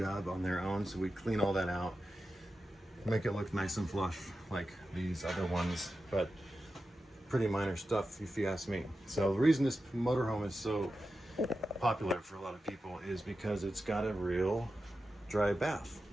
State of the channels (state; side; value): normal; both; correlation 0.91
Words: on their own, so we clean all that out, make it look nice and flush like these other ones, but pretty minor stuff if you ask me. So the reason this motorhome is so popular for a lot of people is because it's got a real dry bath.